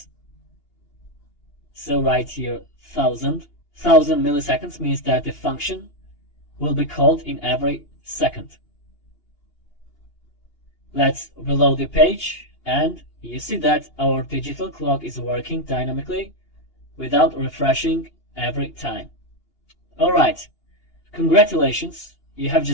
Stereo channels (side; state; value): right; late; 2.8 ms